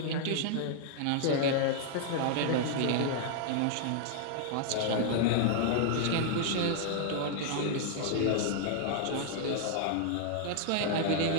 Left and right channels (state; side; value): different; both; correlation 0.00